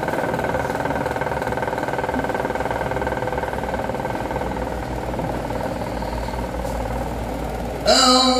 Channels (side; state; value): both; identical; correlation 1.00